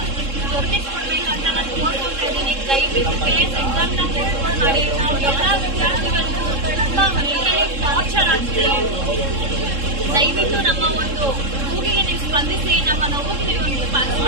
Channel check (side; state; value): left; late; 3.7 ms